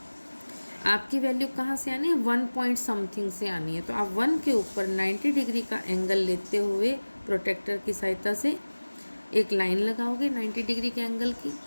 आपकी वैल्यू कहाँ से आनी है, 1 पॉइंट समथिंग से आनी है। तो आप 1 के ऊपर 90 डिग्री का एंगल लेते हुए प्रोटेक्टर की सहायता से एक लाइन लगाओगे 90 डिग्री के एंगल की,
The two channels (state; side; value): inverted; both; correlation -1.00